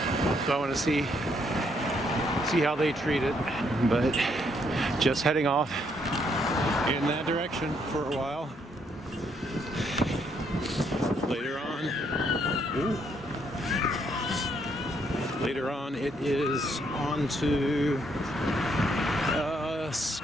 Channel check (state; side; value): normal; both; correlation 0.72